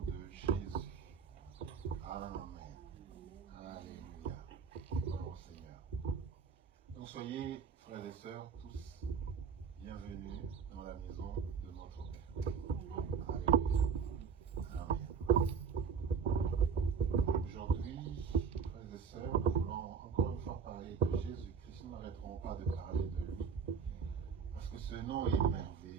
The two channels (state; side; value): quieter; left; 6.2 dB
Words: de Jésus. Amen. Alléluia. Gloire au Seigneur. Donc soyez, frères et sœurs, tous bienvenus dans la maison de notre Père. Alléluia. Amen. Aujourd'hui, frères et sœurs, nous voulons encore une fois parler de Jésus-Christ. Nous n'arrêterons pas de parler de lui. Parce que ce nom est